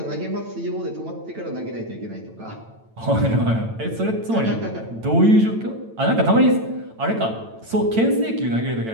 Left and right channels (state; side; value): late; left; 9.0 ms